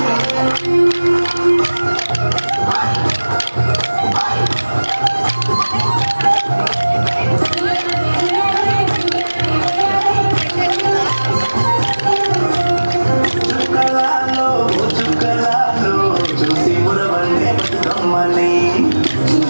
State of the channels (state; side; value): inverted; both; correlation -1.00